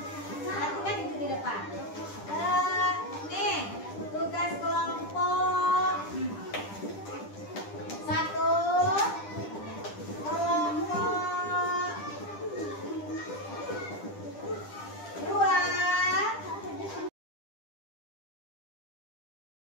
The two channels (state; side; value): late; right; 10 ms